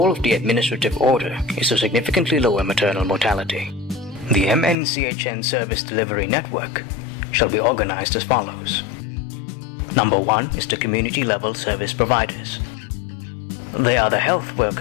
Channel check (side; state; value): right; drops out; at 4.8 s